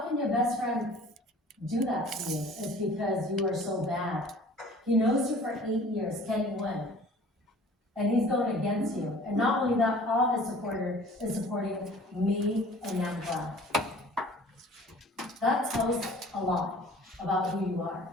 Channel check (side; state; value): both; normal; correlation 0.48